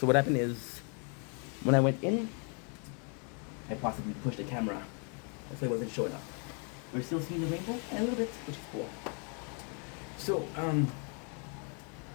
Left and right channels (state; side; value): quieter; right; 38.8 dB